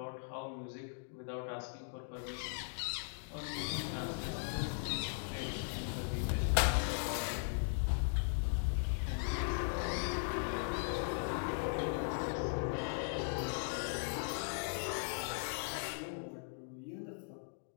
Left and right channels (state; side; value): silent; right; digital silence